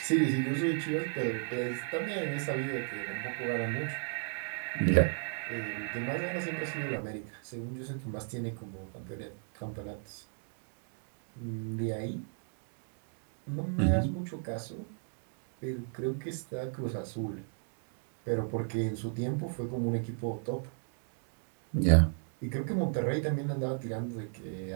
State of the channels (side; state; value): left; silent; 55 dB below the other